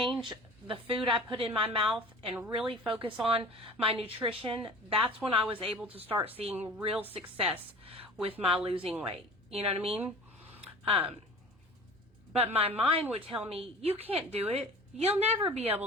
the food I put in my mouth and really focus on my nutrition, that's when I was able to start seeing real success with my losing weight. You know what I mean? But my mind would tell me, you can't do it. You'll never be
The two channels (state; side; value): normal; both; correlation 0.42